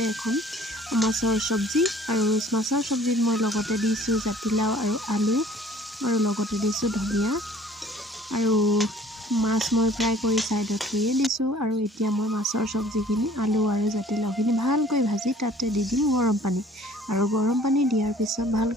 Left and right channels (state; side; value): normal; both; correlation 0.53